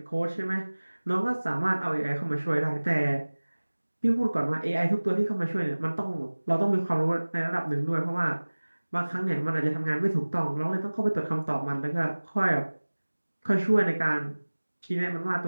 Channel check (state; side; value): inverted; both; correlation -1.00